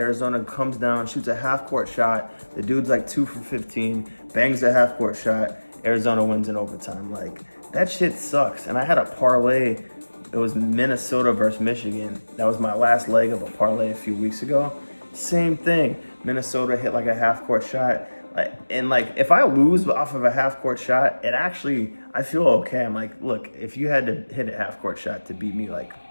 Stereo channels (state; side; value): inverted; both; correlation -1.00